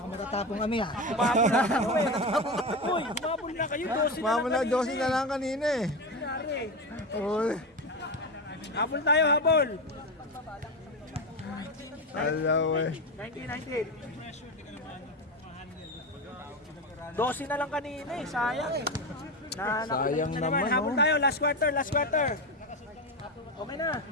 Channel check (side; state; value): both; normal; correlation 0.18